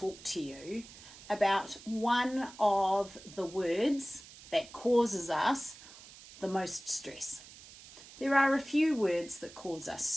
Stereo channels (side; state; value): right; noise; hiss, 18 dB below the sound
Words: to you about one of the words that causes us the most stress. There are a few words that cause us